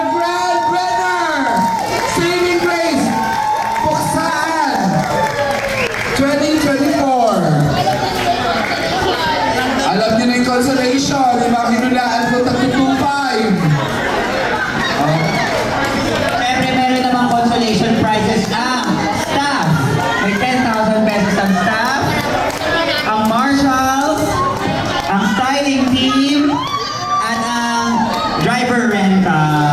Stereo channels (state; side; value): identical; both; correlation 1.00